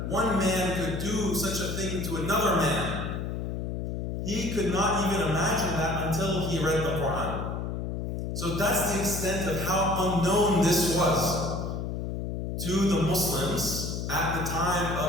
one man could do such a thing to another man. He could not even imagine that until he read the Quran. So that's the extent of how unknown this was to the Muslims at the time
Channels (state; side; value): noise; left; hum, 3 dB below the sound